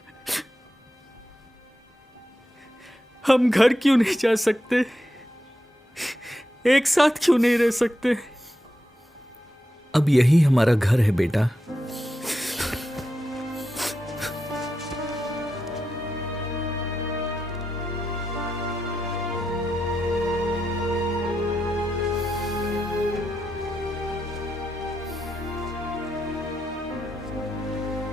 हम घर क्यों नहीं जा सकते? एक साथ क्यों नहीं रह सकते? अब यही हमारा घर है बेटा।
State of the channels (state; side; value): normal; both; correlation 0.87